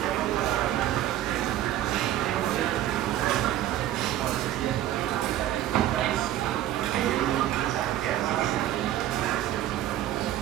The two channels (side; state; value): left; quieter; 13.0 dB